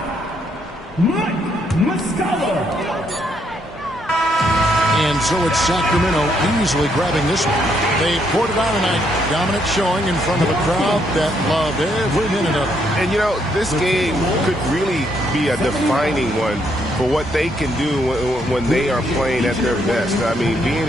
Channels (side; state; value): both; normal; correlation 0.73